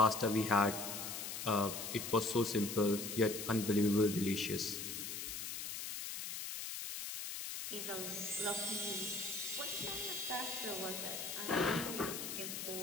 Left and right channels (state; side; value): noise; left; hiss, 5 dB below the sound